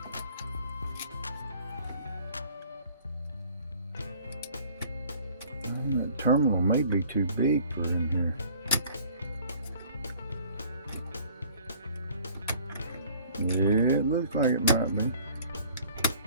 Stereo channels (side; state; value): both; inverted; correlation -0.53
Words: That terminal may be too big for in here. Yeah, it looks like it might be.